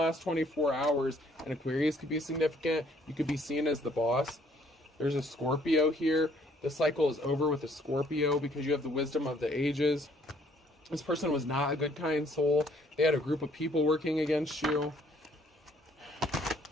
24 hours. An Aquarius could be significant. You could be seen as the boss. There's a Scorpio here. The cycle is over with a Scorpio because you have the wisdom of the ages. This person was not a good, kind soul. They had a group of people working against you.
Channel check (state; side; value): normal; both; correlation 0.63